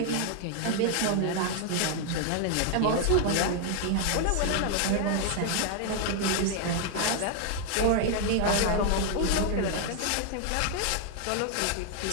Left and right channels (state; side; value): different; both; correlation 0.00